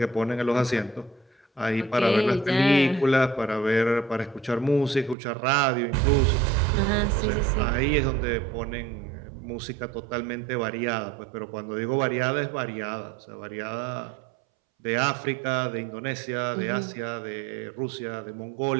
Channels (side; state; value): left; drops out; at 5.2 s